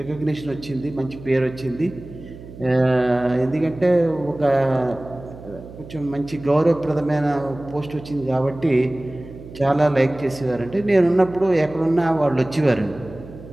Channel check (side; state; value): right; noise; hum, 16 dB below the sound